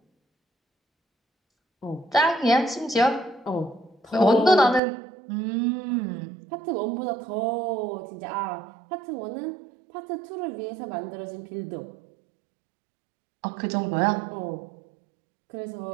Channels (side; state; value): left; drops out; at 4.8 s